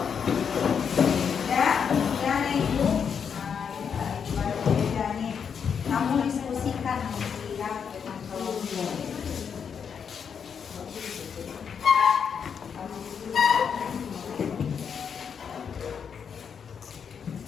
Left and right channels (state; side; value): quieter; right; 7.0 dB